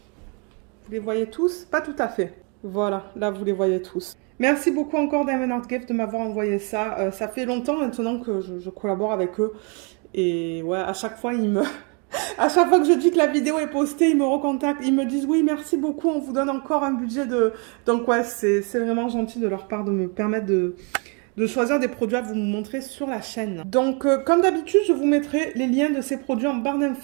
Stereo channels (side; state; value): left; quieter; 35.3 dB